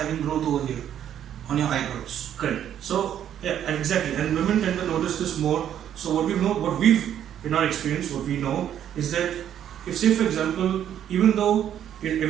growth over here on your eyebrows. Correct. So yeah, exactly. And women tend to notice this more. So what we've in our experience, what we know is that if, say for example, even though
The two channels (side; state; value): left; quieter; 10.1 dB